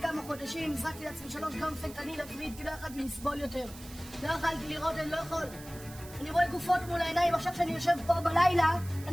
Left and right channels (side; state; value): right; noise; hiss, 17 dB below the sound